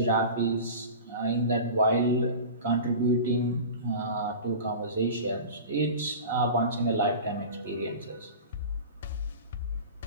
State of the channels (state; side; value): inverted; both; correlation -0.34